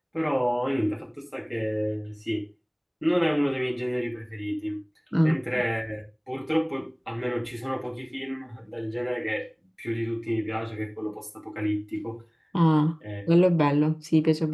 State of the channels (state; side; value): identical; both; correlation 1.00